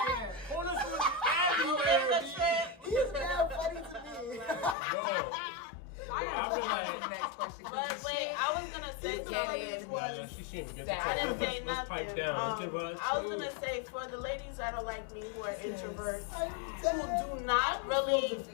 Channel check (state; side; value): drops out; right; at 4.8 s